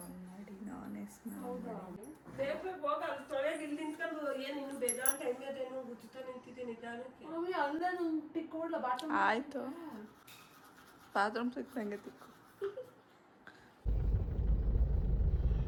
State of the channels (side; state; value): both; identical; correlation 1.00